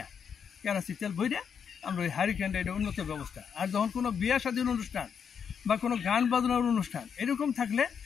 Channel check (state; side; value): quieter; right; 7.1 dB